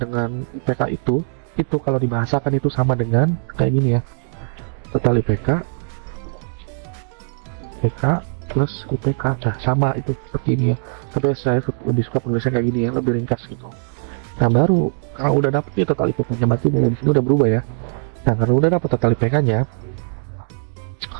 IPK itu kalau dibahasakan itu sama dengan kayak gini ya, total IPK plus IPK, nah sama itu seperti ini ya. Tapi saya lebih suka penulisnya kayak gini ya, lebih ringkas gitu. Nah, baru kalau udah dapet nih total IPK-nya, berarti mulai di sini udah berubah ya. Nah, kalau udah dapet total IPK-nya,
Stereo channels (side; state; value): left; silent; digital silence